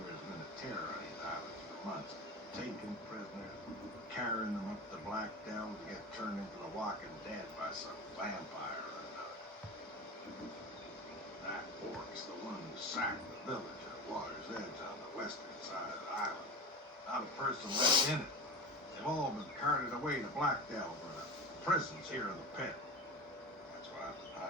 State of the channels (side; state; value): both; normal; correlation 0.29